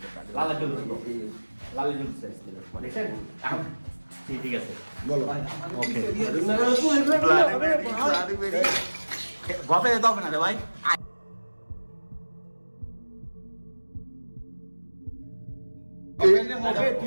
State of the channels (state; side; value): inverted; both; correlation -1.00